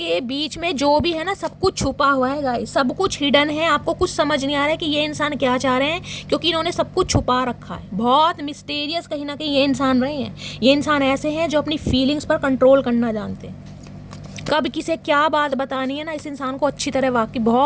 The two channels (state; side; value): identical; both; correlation 1.00